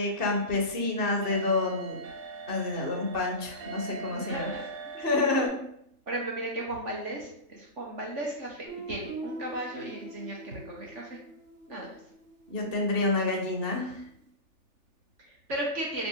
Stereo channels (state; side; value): late; left; 3.4 ms